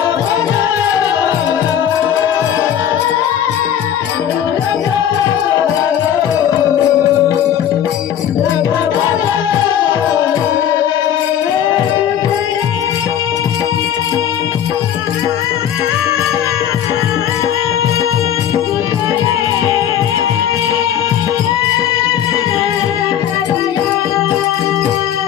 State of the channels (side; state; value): right; quieter; 10.0 dB